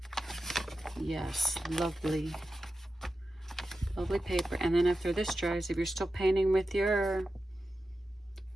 Yes, lovely. Lovely paper. And then after this dries, if you're still painting with your,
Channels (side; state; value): both; normal; correlation 0.92